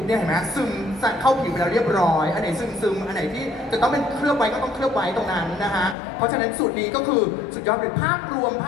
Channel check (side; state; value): right; drops out; at 6.0 s